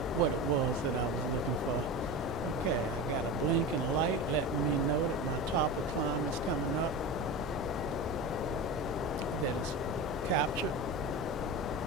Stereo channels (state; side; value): normal; both; correlation 0.26